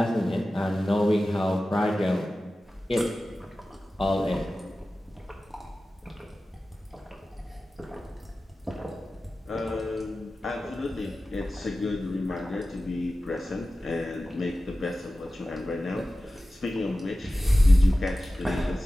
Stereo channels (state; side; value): normal; both; correlation 0.95